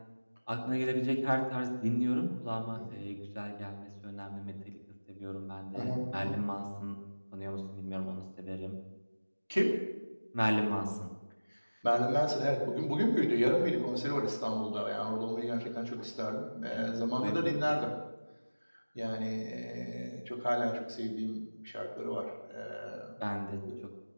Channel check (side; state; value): both; inverted; correlation -1.00